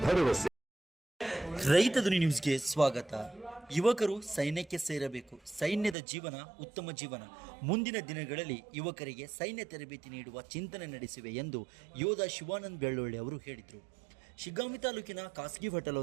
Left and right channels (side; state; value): left; drops out; at 6.0 s